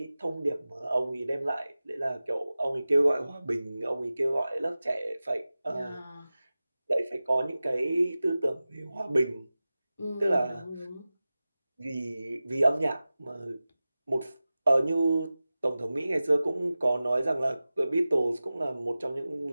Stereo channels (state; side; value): inverted; both; correlation -0.96